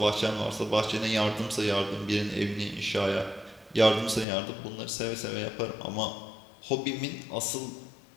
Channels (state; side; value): drops out; right; at 4.2 s